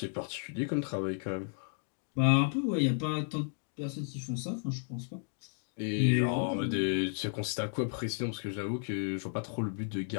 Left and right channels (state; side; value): silent; right; digital silence